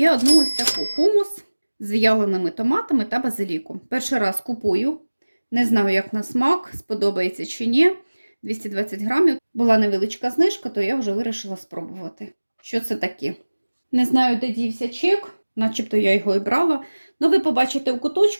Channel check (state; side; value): inverted; both; correlation -1.00